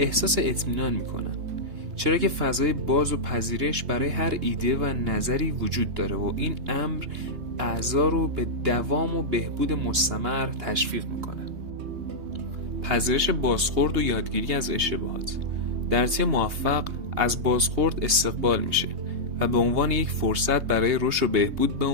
اطمینان میکنن، چرا که فضای باز و پذیرش برای هر ایده و نظری وجود داره و این امر اعضا رو به دوام و بهبود مستمر تشویق میکنه. پذیرش بازخورد و یادگیری از اشتباهات. در تیم موفق از بازخورد استقبال میشه و به عنوان یک فرصت برای رشد و بهبود به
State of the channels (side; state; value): left; late; 3.2 ms